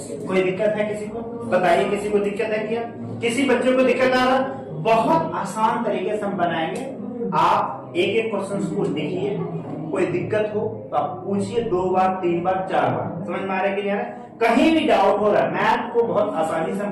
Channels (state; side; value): identical; both; correlation 1.00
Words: कोई दिक्कत है किसी को बताइए किसी को दिक्कत है क्या किसी बच्चे को दिक्कत आ रहा। बहुत आसान तरीके से हम बनाएंगे। आप एक एक क्वेश्चन को देखिए कोई दिक्कत हो तो आप पूछिए 2 बार 3 बार 4 बार। समझ में आ रहा है कि नहीं आ रहा है। कहीं भी डाउट हो रहा है मैथ को बहुत आसानी से